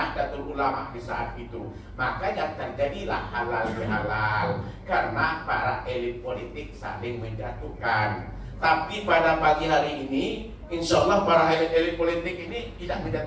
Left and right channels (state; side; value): identical; both; correlation 1.00